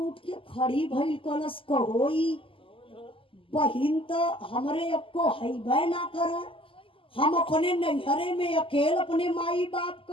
के खड़ी भइल, कलश कहोई बहिन तो हमरे अब को हैबे ना करे, हम अपने नैहरे में अकेले अपने माई बाप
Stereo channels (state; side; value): late; right; 0.25 ms